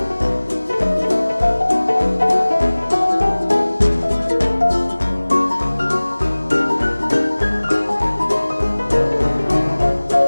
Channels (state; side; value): inverted; both; correlation -1.00